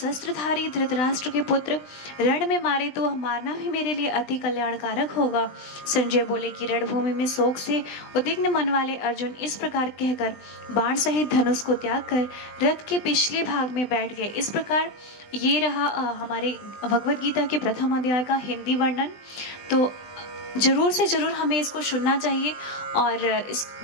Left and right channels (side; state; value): right; late; 20 ms